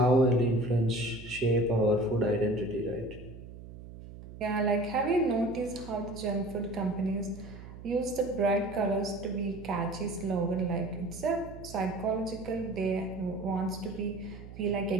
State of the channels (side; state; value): right; noise; hum, 14 dB below the sound